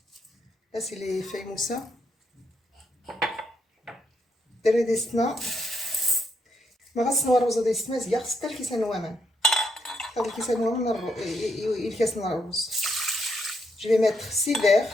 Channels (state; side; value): normal; both; correlation 0.77